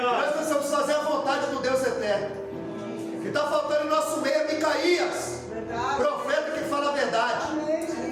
Nós precisamos fazer a vontade do Deus eterno. O que está faltando em nosso meio é Micaías, Verdade. profeta que fala a verdade.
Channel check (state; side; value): identical; both; correlation 1.00